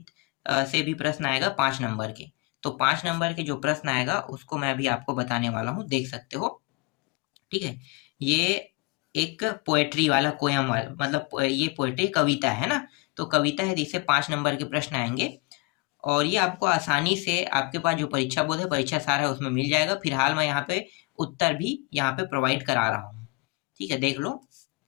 से भी प्रश्न आएगा 5 नंबर के। तो 5 नंबर के जो प्रश्न आएगा उसको मैं अभी आपको बताने वाला हूँ, देख सकते हो। ठीक है, ये एक पोएट्री वाला पोयम वाला मतलब ये पोएट्री कविता है ना। तो कविता है, जिससे 5 नंबर के प्रश्न आएंगे। और ये आपको आसानी से आपके पास जो परीक्षा बोर्ड है, परीक्षा सार है, उसमें मिल जाएगा। फिलहाल मैं यहाँ पे उत्तर भी यहाँ पे प्रोवाइड करा रहा हूँ। ठीक है, देख लो।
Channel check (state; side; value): quieter; right; 26.0 dB